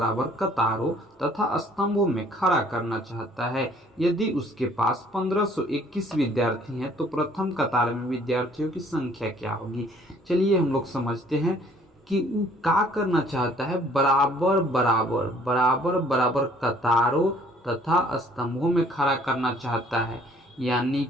कतारों तथा स्तंभों में खड़ा करना चाहता है। यदि उसके पास 1521 विद्यार्थी हैं तो प्रथम कतार में विद्यार्थियों की संख्या क्या होगी। चलिए हम लोग समझते हैं कि वो क्या करना चाहता है। बराबर बराबर बराबर बराबर कतारों तथा स्तंभों में खड़ा करना चाहता है, यानी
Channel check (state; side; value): normal; both; correlation 0.58